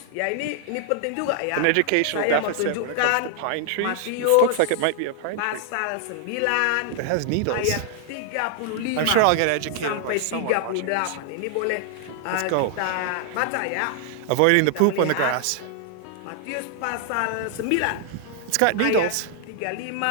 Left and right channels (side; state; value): both; different; correlation 0.00